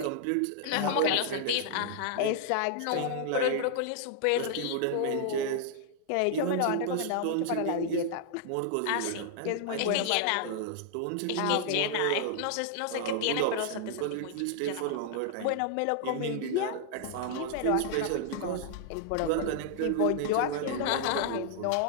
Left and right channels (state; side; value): different; both; correlation -0.01